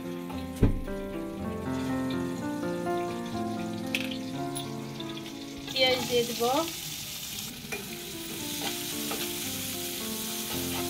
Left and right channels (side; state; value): both; identical; correlation 1.00